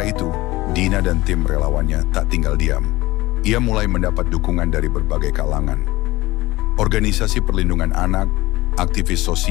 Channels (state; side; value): quieter; right; 19.0 dB